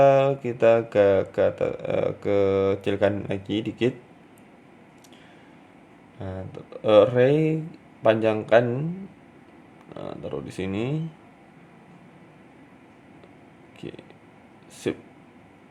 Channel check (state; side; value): identical; both; correlation 1.00